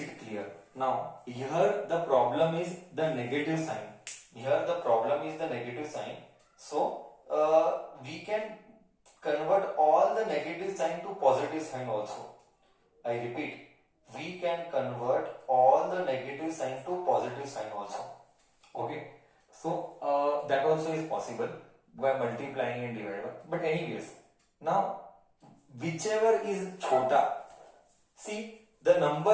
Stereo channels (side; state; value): both; identical; correlation 1.00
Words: clear. Now here the problem is the negative sign. So we can convert all the negative sign to positive sign also. I repeat, we can convert all the negative sign to positive sign also. Okay, so that also is possible by multiplying and dividing. But anyways, now whichever is chota, see the